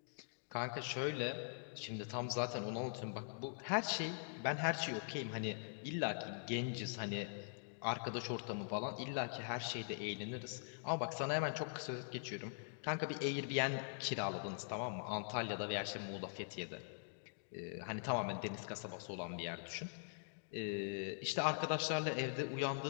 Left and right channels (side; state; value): right; silent; digital silence